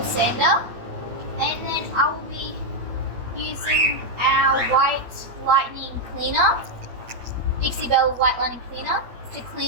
sander, and then I will be using our white lightning cleaner, Dixie Belle white lightning cleaner, to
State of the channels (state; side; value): late; left; 8.5 ms